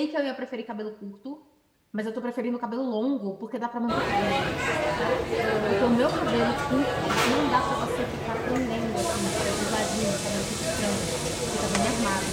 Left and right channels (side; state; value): both; identical; correlation 1.00